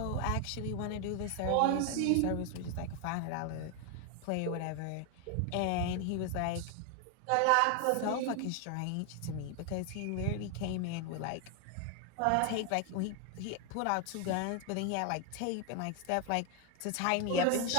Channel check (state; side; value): different; both; correlation 0.01